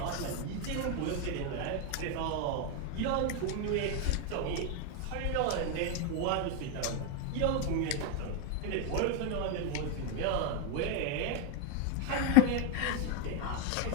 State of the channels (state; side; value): different; both; correlation 0.01